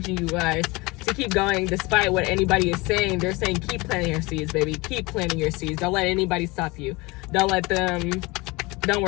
you guys to keep going despite what anybody is saying. They're saying keep planting your seeds, baby. Keep planting your seeds. Don't let anybody stop you. Don't worry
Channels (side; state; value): right; quieter; 24.0 dB